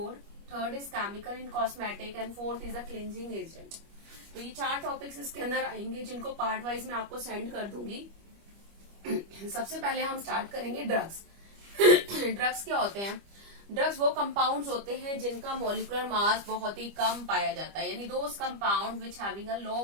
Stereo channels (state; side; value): late; left; 25 ms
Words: third is chemical in cosmetic and fourth is the cleansing agent. तो ये 4 टॉपिक्स इसके अंदर आएंगे जिनको पार्ट वाइज मैं आपको सेंड कर दूंगी। सबसे पहले हम स्टार्ट करेंगे ड्रग्स। ड्रग्स क्या होते हैं? ड्रग्स वो कंपाउंड्स होते हैं जिनका मॉलिक्यूलर मास बहुत ही कम पाया जाता है, यानी those compound which having a low